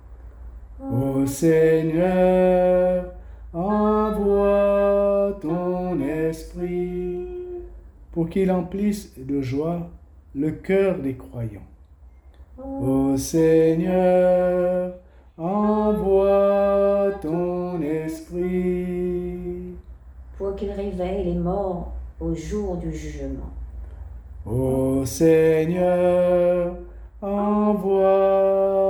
Ô Seigneur, envoie ton esprit pour qu'il emplisse de joie le cœur des croyants. Ô Seigneur, envoie ton esprit pour qu'il réveille les morts au jour du jugement. Ô Seigneur,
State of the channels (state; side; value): identical; both; correlation 1.00